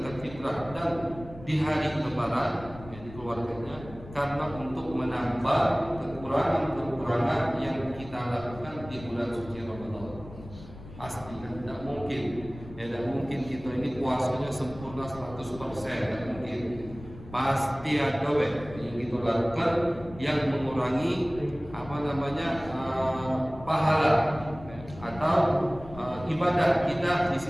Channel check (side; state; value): left; noise; rumble, 16 dB below the sound